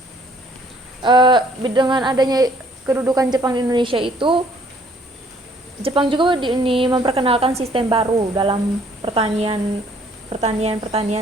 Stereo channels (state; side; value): normal; both; correlation 0.61